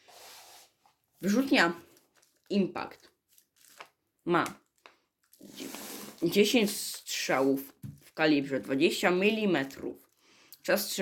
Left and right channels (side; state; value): both; identical; correlation 1.00